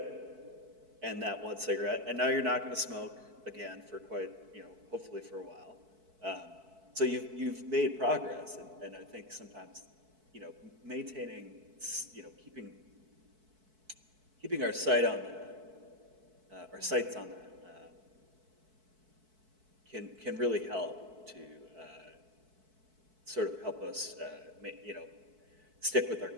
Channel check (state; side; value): late; left; 4.6 ms